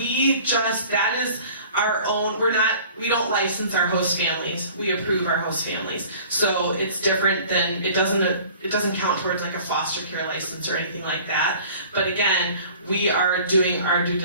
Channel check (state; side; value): inverted; both; correlation -0.47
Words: is our own, we don't license our host families, we approve our host families. So it's different than, it doesn't count towards like a foster care license or anything like that. But again, we are doing our due